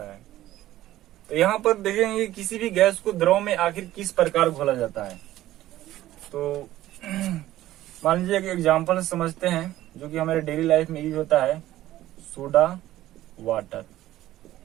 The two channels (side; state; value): left; quieter; 14.6 dB